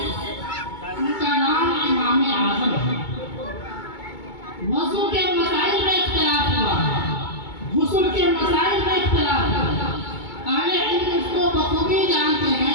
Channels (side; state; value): right; late; 2.2 ms